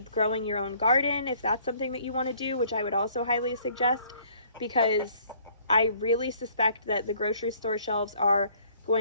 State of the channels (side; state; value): both; inverted; correlation -0.59